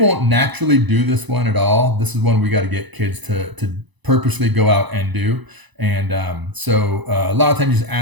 naturally do this one at all. This is one we got to get kids to purposely go out and do. And so a lot of times you just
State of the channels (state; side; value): late; left; 1.0 ms